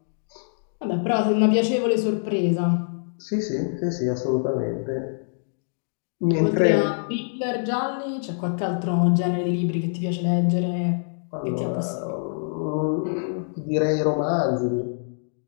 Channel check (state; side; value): silent; right; digital silence